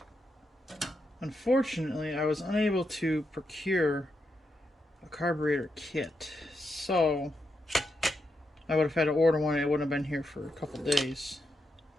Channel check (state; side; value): normal; both; correlation 0.84